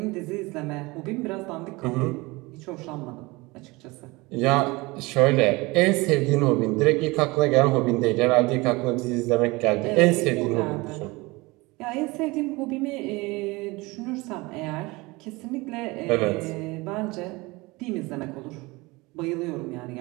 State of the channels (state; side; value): quieter; left; 23.4 dB